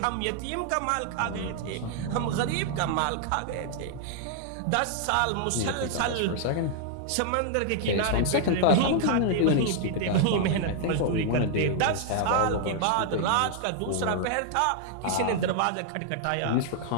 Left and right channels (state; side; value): different; both; correlation 0.00